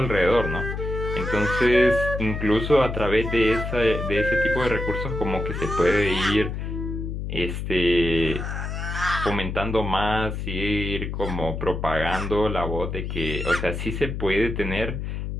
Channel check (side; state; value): left; noise; hum, 4 dB below the sound